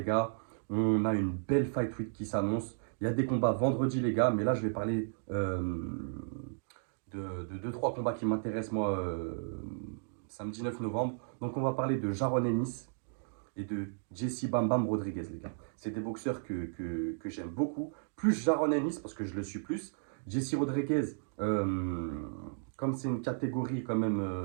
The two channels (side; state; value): left; silent; digital silence